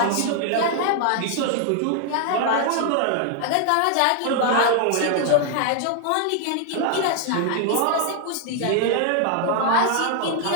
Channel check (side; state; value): both; different; correlation 0.00